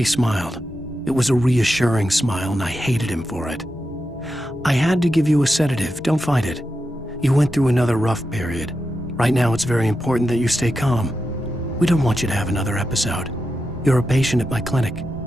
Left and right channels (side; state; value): both; normal; correlation 0.88